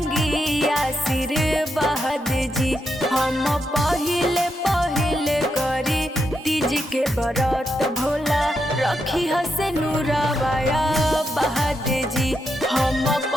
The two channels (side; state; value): both; normal; correlation 0.83